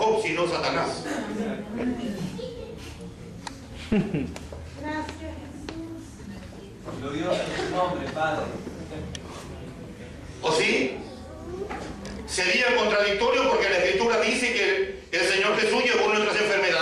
sino Satanás. Glorioso es tu nombre, Padre. ¿O sí? Sería contradictorio porque la Escritura dice que el Señor Jesús llevó nuestras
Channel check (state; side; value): identical; both; correlation 1.00